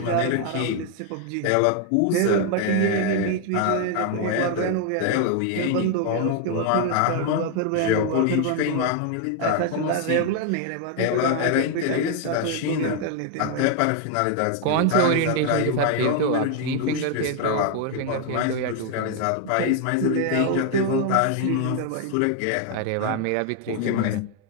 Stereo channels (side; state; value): both; different; correlation 0.00